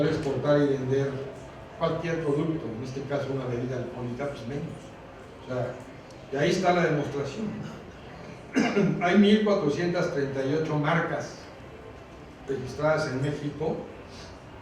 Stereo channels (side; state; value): both; identical; correlation 1.00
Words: exportar y vender cualquier producto, en este caso una bebida alcohólica, pues menos. O sea, y ahí está la demostración. Hay 1.438 marcas registradas en México